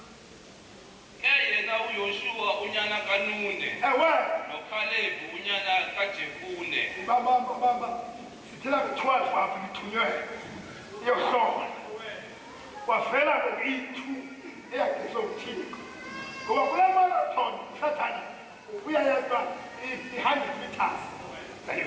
6 yena uYoshua unyana kaNune noKhalebi unyana kaJefune bamba Tell me 12 after you to your son. Was fella to eat 2 acres of tea. Go up a marathon, Satan. We are behind the task.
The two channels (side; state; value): both; identical; correlation 1.00